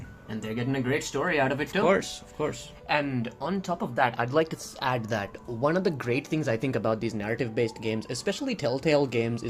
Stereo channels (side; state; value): both; identical; correlation 1.00